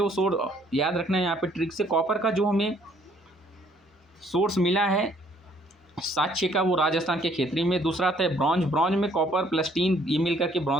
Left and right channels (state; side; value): normal; both; correlation 0.63